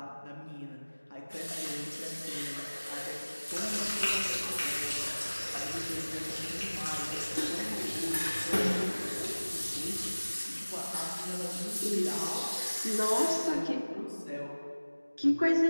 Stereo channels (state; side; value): inverted; both; correlation -1.00